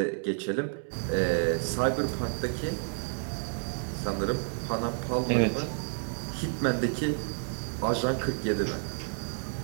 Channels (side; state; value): left; silent; digital silence